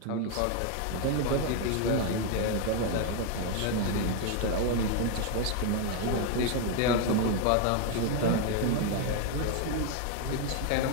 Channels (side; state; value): both; different; correlation 0.01